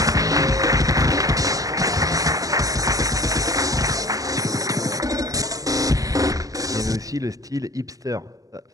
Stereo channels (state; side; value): late; left; 0.17 ms